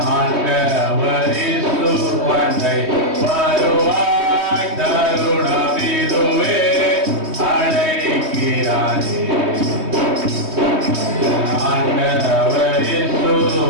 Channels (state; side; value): late; left; 3.2 ms